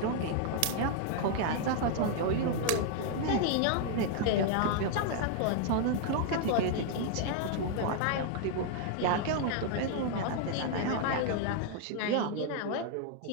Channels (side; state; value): both; different; correlation 0.00